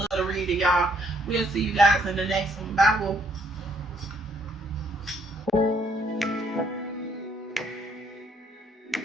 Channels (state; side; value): normal; both; correlation 0.68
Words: to read it, y'all. We'll see you guys in the next one. Bye.